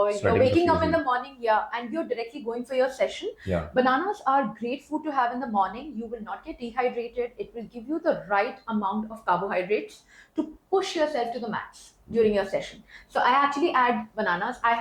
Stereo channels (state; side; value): identical; both; correlation 1.00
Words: you're waking up in the morning, and you're directly going for your session. Yeah. Bananas are great food to have in the morning. You will not get dehydrated. It will give you the right amount of carbohydrates to push yourself to the max during your session. So I actually add bananas. I